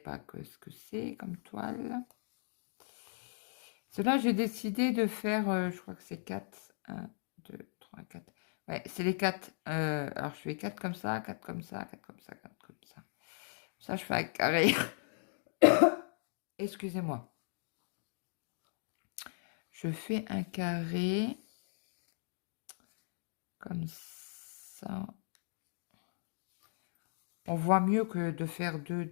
ce que c'est comme toile. Cela, j'ai décidé de faire, je crois que c'est 4. 1, 2, 3, 4. Ouais, c'est les 4. Alors, je fais 4 comme ça, 4 comme ça, 4 comme ça, 4 comme ça. Ça, je fais un carré. Excusez-moi. Je fais un carré comme ça. On voit mieux que de faire 2,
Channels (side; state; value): right; silent; digital silence